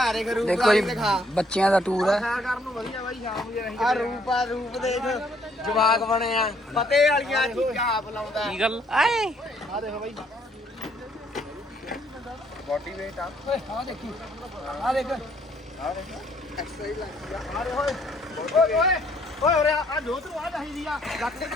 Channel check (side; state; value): both; normal; correlation 0.66